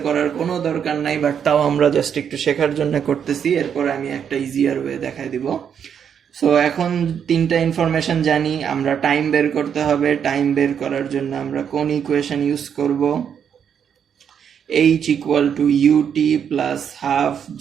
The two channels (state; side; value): quieter; left; 8.0 dB